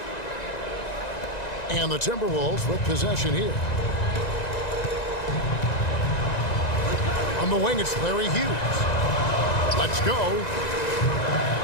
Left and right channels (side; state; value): right; late; 1.9 ms